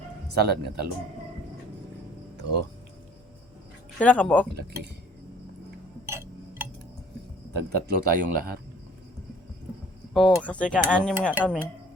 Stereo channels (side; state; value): both; normal; correlation 0.54